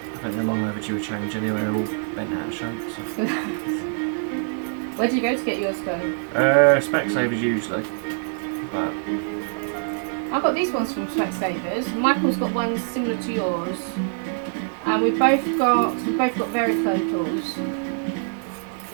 think they're long overdue a change anyway, they're all bent out of shape. So. Where do you go to get yours done? Specsavers usually, but I got these ones from Specsavers. Michael's got ones similar to yours, and we've both got varifocals.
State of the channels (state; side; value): silent; left; digital silence